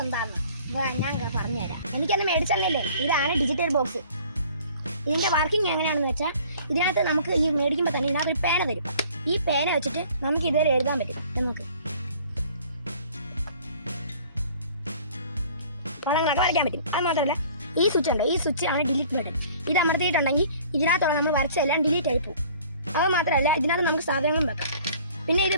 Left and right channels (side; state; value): both; inverted; correlation -0.52